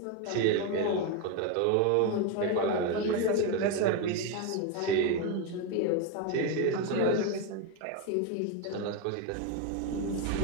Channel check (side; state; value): both; different; correlation 0.03